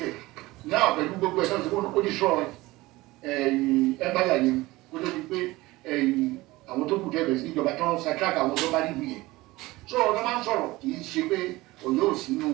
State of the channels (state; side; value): quieter; left; 19.9 dB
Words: náà pẹ̀lú gbogbo ẹ̀ náà tó kó ní sọ ẹ̀báyà yẹn kó tó di pé àwọn tó kù dẹ́bẹ̀ sí ìjọba tó ń ṣàtúràkà àwọn tó bá rí ìwé yẹn so ọ̀nà máa ń sọ̀rọ̀ kì í ṣe pé Ọ̀yọ́ ò sínú